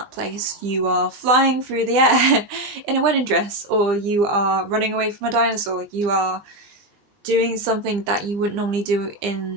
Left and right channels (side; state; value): left; late; 20 ms